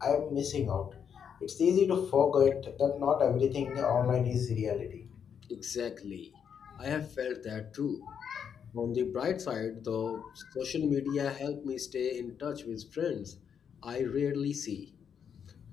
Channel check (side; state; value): right; quieter; 7.6 dB